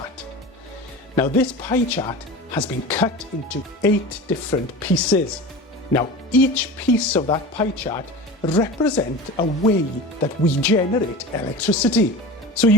Now this pie chart has been cut into 8 different pieces. Now each piece of that pie chart represents a way that we generate electricity. So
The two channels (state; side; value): normal; both; correlation 0.32